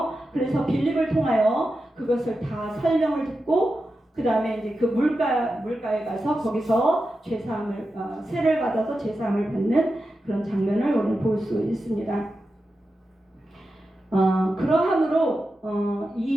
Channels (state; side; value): normal; both; correlation 0.91